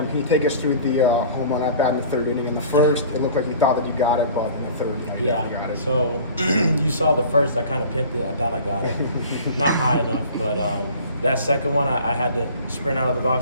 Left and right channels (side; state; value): both; inverted; correlation -0.44